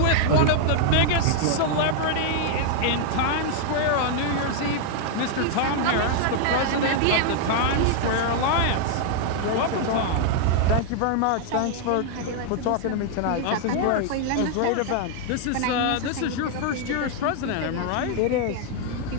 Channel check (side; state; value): both; different; correlation 0.00